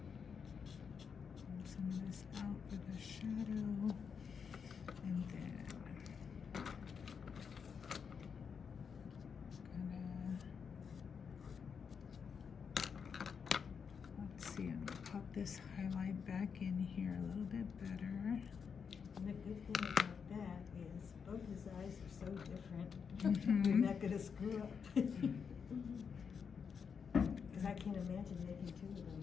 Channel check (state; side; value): quieter; right; 6.4 dB